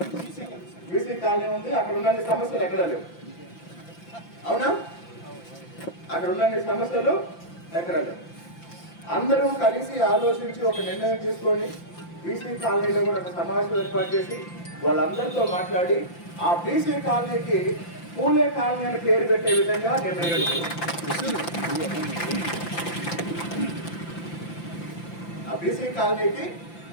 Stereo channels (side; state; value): right; late; 5.8 ms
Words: బీసీ కాలనీ ఉంది. అక్కడ ఉన్న సమస్యలు ఎక్కడా లేవు, అవునా? అక్కడ ఉన్న సమస్యలు ఎక్కడా లేవు. అందరూ కలిసి ఆలోచించి ఒక నిర్ణయం తీసుకొని బీసీ కాలనీలో కూడా ఒక సమావేశం ఏర్పాటు చేసి వాళ్ళందరితో మాట్లాడి ఆ బీసీ కాలనీకి పూలే కాలనీ అని పేరు పెట్టే విధంగా నిర్ణయం తీసుకున్నాం. ఆ బీసీ కాలనీకి